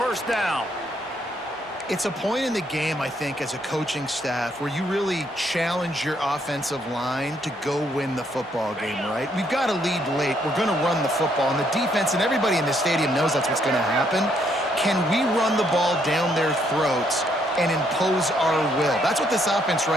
down. It's a point in the game, I think, as a coaching staff where you really challenge your offensive line to go win the football game, right? We've got to lead late. We're going to run the football, and the defense and everybody in the stadium knows that's what's going to happen. Can we run the ball down their throats and impose our will? That's what this offense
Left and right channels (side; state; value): both; normal; correlation 0.71